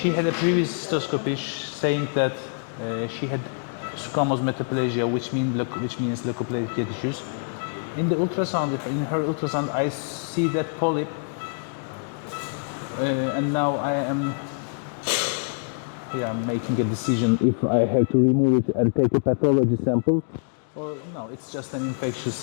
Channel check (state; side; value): silent; right; digital silence